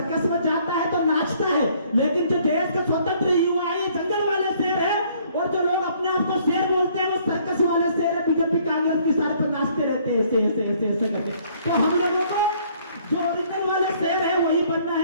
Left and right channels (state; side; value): inverted; both; correlation -0.62